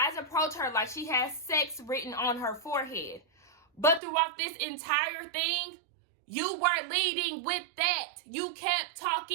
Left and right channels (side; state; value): left; drops out; at 4.0 s